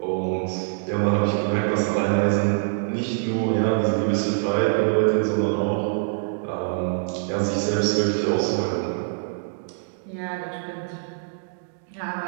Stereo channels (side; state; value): left; silent; digital silence